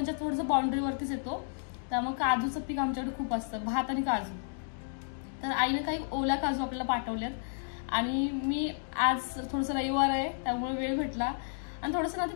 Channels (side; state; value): right; silent; digital silence